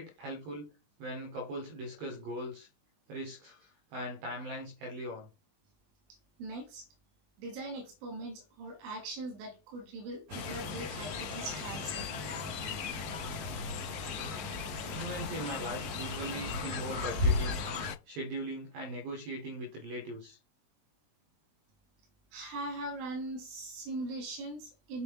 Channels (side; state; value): left; late; 19 ms